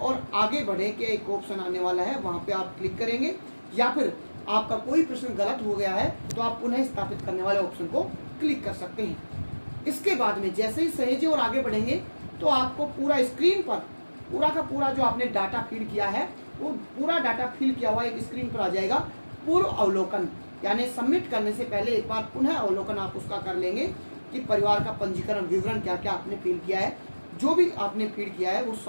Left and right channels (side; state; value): both; inverted; correlation -1.00